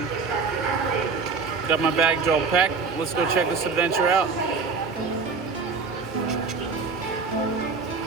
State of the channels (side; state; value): left; quieter; 4.8 dB